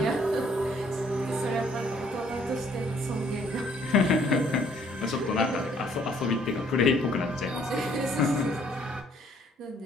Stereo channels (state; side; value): normal; both; correlation 0.63